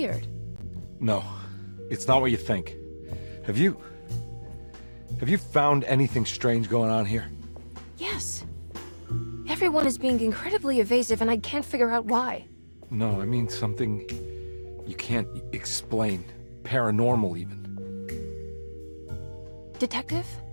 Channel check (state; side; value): inverted; both; correlation -1.00